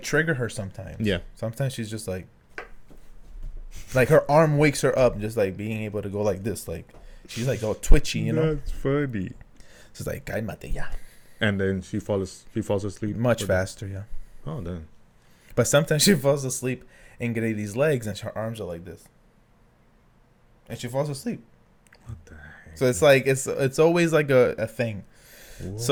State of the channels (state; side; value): identical; both; correlation 1.00